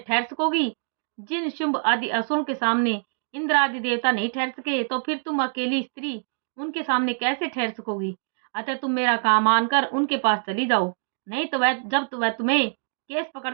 सकोगी। जिन शुंभ आदि असुरों के सामने इंद्र आदि देवता नहीं ठहर सके, तो फिर तुम अकेली स्त्री उनके सामने कैसे ठहर सकोगी? अतः तुम मेरा काम मानकर उनके पास चली जाओ, नहीं तो वह तुम्हें केस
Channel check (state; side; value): silent; left; 62 dB below the other